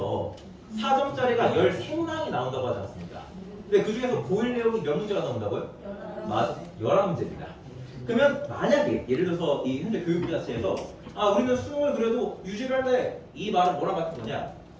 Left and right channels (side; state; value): both; identical; correlation 1.00